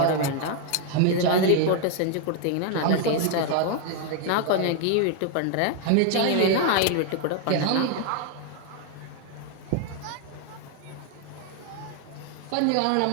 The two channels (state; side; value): different; both; correlation 0.00